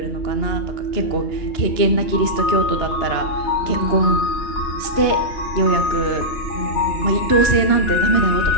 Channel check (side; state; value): right; late; 2.9 ms